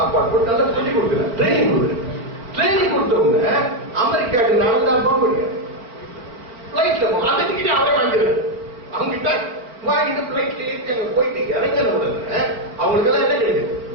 போட்டு நல்லா சொல்லி கொடுக்குறேன், ட்ரைனிங் கொடுக்குறேன். ட்ரைனிங் கொடுத்தவங்க அமெரிக்காவுக்கு நடந்தா போக முடியாது. பிளைட்ல அந்த டிக்கெட் அவரே வாங்கிடுறாரு. அவங்க கிட்ட வாங்கிட்டு பிளைட்ல ஏற்றி அங்க போயிட்டு இறங்கின உடனே அவங்களுக்கு எல்லாம் என்ன கிடைக்குது?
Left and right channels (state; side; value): late; left; 4.4 ms